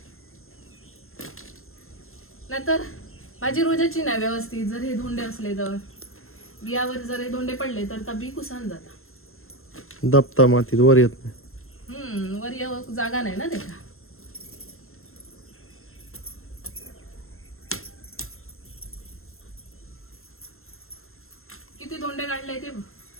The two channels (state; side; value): late; right; 0.62 ms